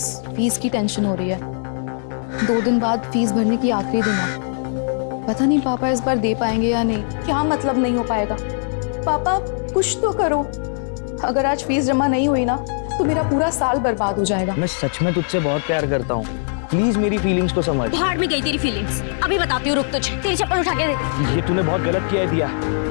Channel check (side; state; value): right; silent; digital silence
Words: फीस की टेंशन हो रही है। 2 दिन बाद फीस भरने की आखिरी दिन है। पता नहीं पापा इस बार दे पाएंगे या नहीं। क्या मतलब नहीं हो पाएगा? पापा कुछ तो करो। अगर आज फीस जमा नहीं हुई ना तो मेरा पूरा साल बर्बाद हो जाएगा। मैं सच में तुझसे बहुत प्यार करता हूँ, प्लीज मेरी फीलिंग्स को समझ। भाड़ में गई तेरी फीलिंग्स, अभी बताती हूँ, रुक तुझे। तेरी चप्पल उठा के दे। ये तूने बहुत गलत किया है दिया,